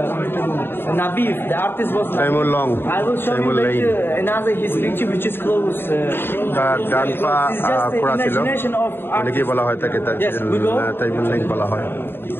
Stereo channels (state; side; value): late; right; 0.11 ms